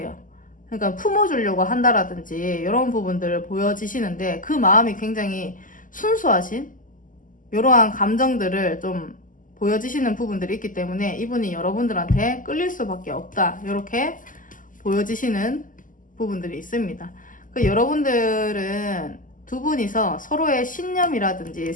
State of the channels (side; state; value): right; late; 0.38 ms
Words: 그러니까 품어주려고 한다라든지 이런 부분들을 보여지시는데, 그 마음이 굉장히 순수하신 이러한 감정들을 좀 보여지시는 부분들이 있기 때문에 이분이 여러분들한테 끌릴 수밖에 없다, 이렇게 보여지시는 부분들이 있습니다. 그 여러분들은 두 분이서 서로의 신념이라든지